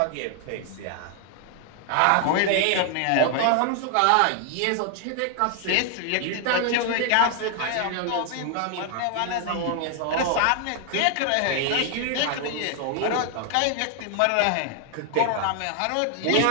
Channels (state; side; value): different; both; correlation 0.00